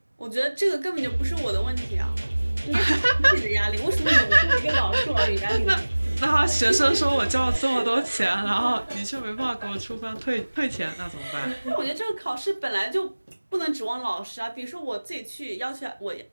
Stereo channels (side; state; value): both; inverted; correlation -1.00